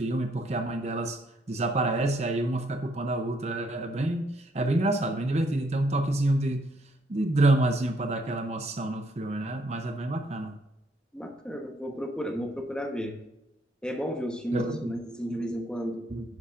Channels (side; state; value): both; normal; correlation 0.70